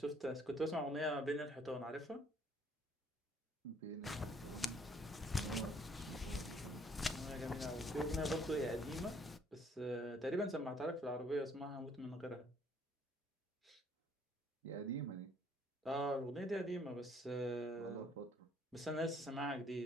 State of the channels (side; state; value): both; normal; correlation 0.63